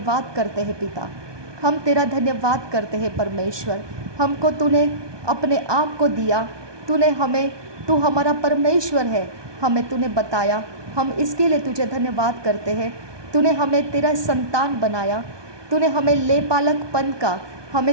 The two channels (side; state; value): left; late; 1.2 ms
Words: करते हैं पिता, हम तेरा धन्यवाद करते हैं परमेश्वर। हमको तूने अपने आप को दिया, तूने हमें, तू हमारा परमेश्वर है, हमें तूने बताया। हम इसके लिए तुझे धन्यवाद करते हैं। तूने हमें तेरा संतान बनाया, तूने हमें लेपालकपन का,